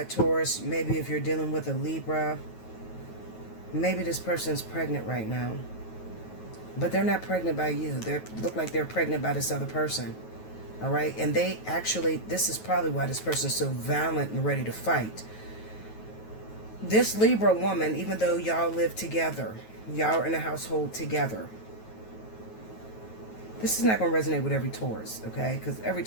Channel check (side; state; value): right; late; 9.3 ms